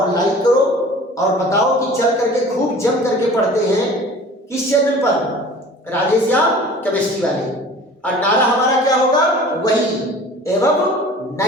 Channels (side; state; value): both; normal; correlation 0.44